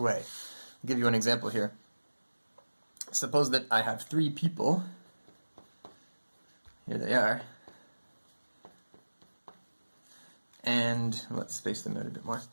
I'll give you an example here. Suppose that I have 3 people. Here they are. And let's space them out a bit more.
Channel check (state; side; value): inverted; both; correlation -1.00